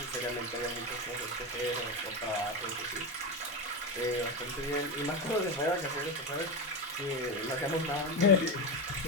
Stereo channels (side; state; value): both; normal; correlation 0.16